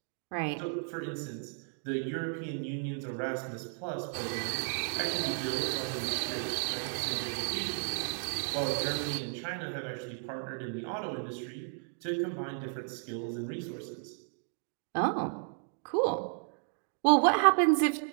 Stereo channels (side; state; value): left; silent; 55 dB below the other